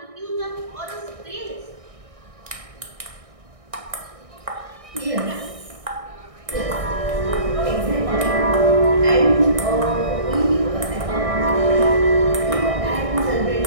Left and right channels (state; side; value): late; left; 1.6 ms